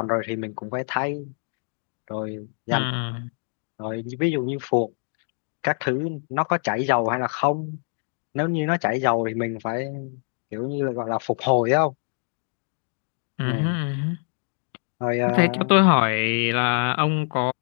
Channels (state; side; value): silent; right; 56 dB below the other